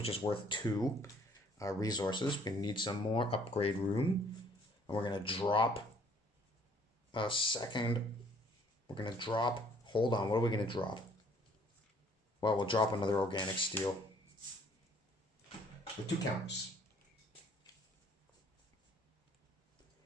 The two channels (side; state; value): both; normal; correlation 0.60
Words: is worth 2 resources. We need some more upgrade room. And we're going to drop a second. We're going to drop. Hold on. What are we going to drop? Well, we'll drop another Organic Steel with 2 counters.